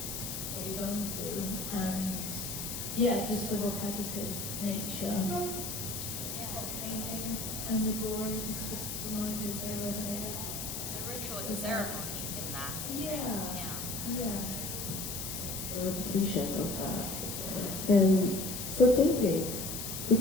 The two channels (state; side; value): noise; left; hiss, 5 dB below the sound